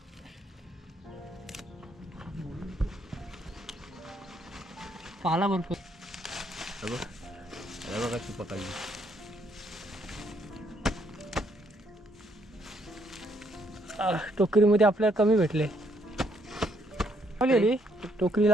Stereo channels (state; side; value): normal; both; correlation 0.71